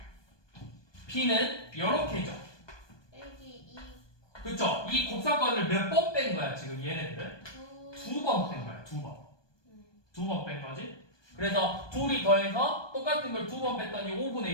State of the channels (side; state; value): right; late; 1.2 ms